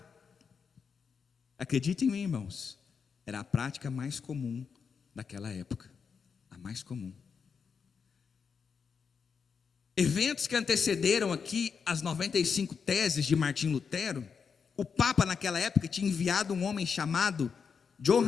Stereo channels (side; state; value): right; quieter; 6.0 dB